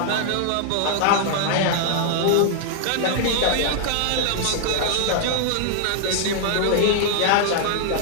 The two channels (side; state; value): both; different; correlation 0.00